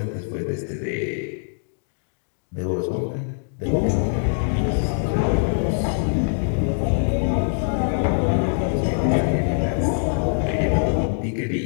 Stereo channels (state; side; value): silent; right; digital silence